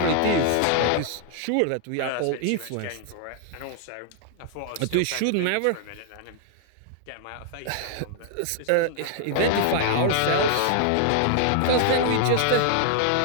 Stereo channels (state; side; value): different; both; correlation 0.00